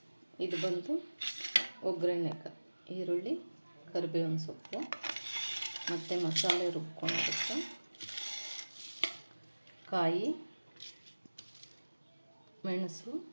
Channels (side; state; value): both; inverted; correlation -1.00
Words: ಇದು ಬಂದು ಒಗ್ಗರಣೆಗೆ ಈರುಳ್ಳಿ, ಕರಿಬೇವಿನ ಸೊಪ್ಪು ಮತ್ತು ಮಸಾಲೆ ರುಬ್ಕೊಂಡಿರುತ್ತೆ, ಕಾಯಿ, ಮೆಣಸು,